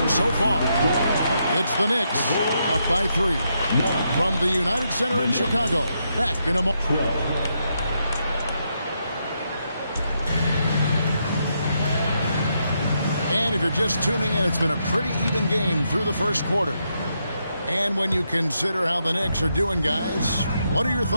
so far. It's the Knicks up by 3 from the United Center in Chicago. Back in a moment. And if you're just tuning in, it's been a pretty even game through the first quarter. And when you consider how the Knicks are doing, guys, what are your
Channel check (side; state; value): both; inverted; correlation -0.80